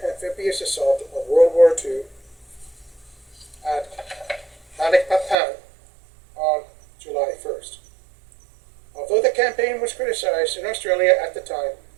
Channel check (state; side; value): drops out; left; at 5.4 s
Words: amphibious assault of World War II at Balikpapan on July 1st. Although campaign was criticized in Australia at the time